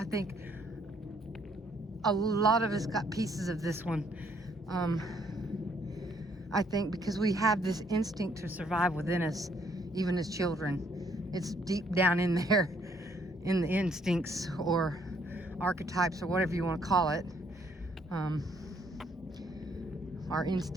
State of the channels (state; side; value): normal; both; correlation 0.67